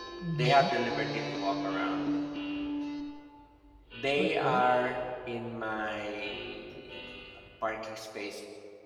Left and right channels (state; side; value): identical; both; correlation 1.00